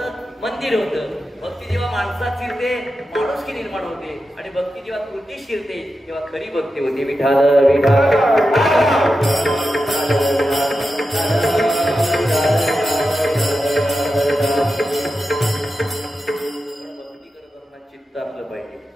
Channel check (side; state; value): both; normal; correlation 0.90